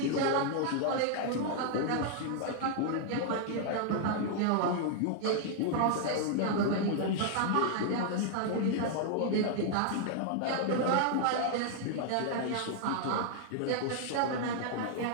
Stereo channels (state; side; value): different; both; correlation 0.00